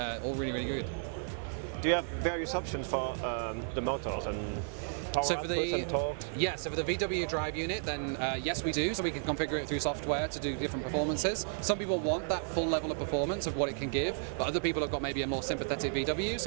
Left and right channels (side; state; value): left; silent; 56 dB below the other